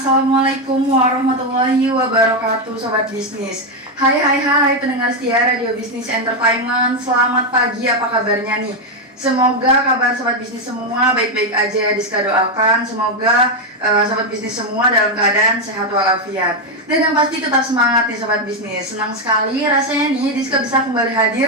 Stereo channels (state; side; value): normal; both; correlation 0.05